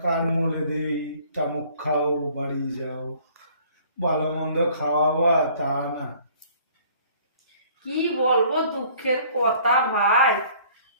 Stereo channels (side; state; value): both; inverted; correlation -0.56